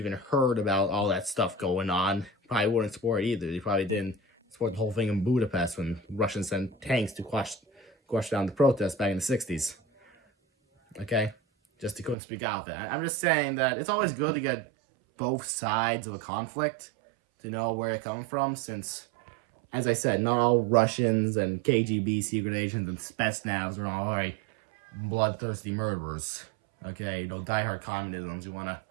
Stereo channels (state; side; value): drops out; left; at 12.2 s